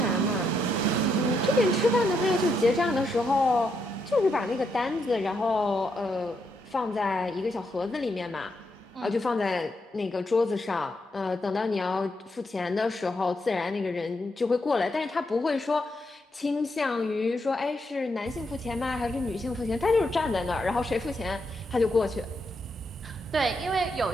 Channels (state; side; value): normal; both; correlation 0.79